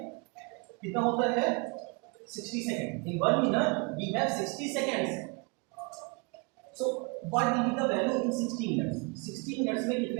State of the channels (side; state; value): left; quieter; 31.6 dB